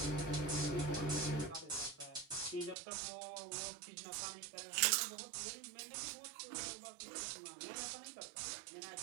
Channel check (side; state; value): left; drops out; at 2.8 s